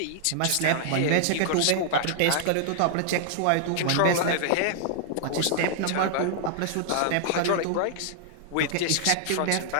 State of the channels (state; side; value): different; both; correlation -0.01